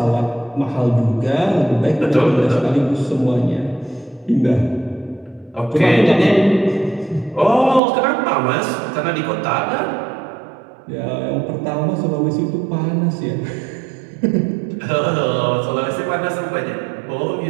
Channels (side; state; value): left; drops out; at 7.8 s